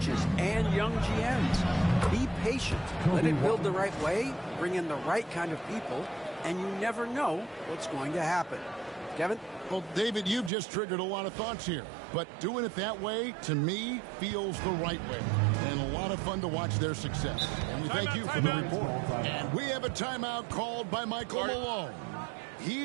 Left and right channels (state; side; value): drops out; left; at 10.5 s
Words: and young GMs. Be patient. Let it build the right way, bring in the right kind of people, and you never know what's going to happen. Kevin? Well, David, you've just triggered a lot of thoughts here. But doing it that way, to me, feels the right way. And a lot of fun to watch their success. And we thank you for the report. And we have a timeout called by Michael Malone.